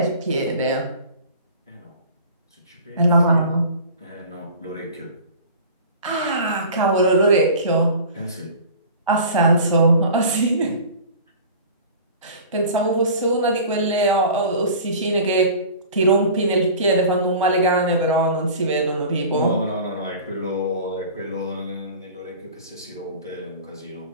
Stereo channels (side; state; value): both; inverted; correlation -0.41